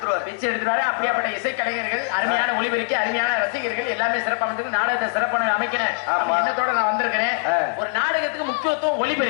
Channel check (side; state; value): right; silent; 64 dB below the other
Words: எடுத்துருவாரு. அப்படியாப்பட்ட இசை கலைஞர்கள், அருமையான ஒளிபெருக்கி, அருமையான ரசிகர்கள் எல்லாமே சிறப்பாக நாடகத்தை சிறப்பான அமைக்கிறேன் எண்ணத்தோட நான் வந்திருக்கிறேன். ஒரு நாடகத்துக்கு முக்கியத்துவம்